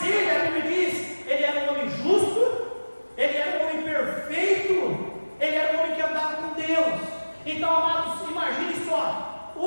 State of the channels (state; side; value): inverted; both; correlation -1.00